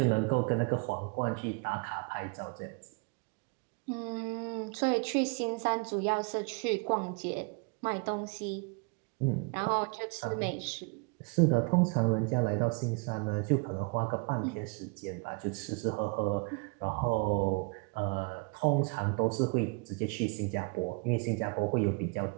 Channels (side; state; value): left; quieter; 31.9 dB